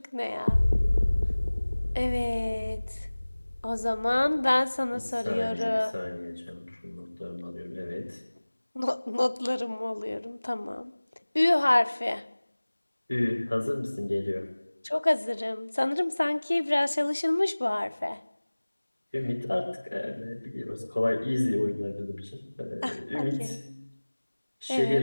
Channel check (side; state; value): both; inverted; correlation -1.00